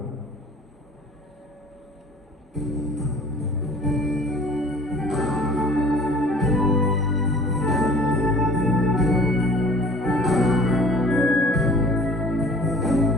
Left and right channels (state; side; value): normal; both; correlation 0.48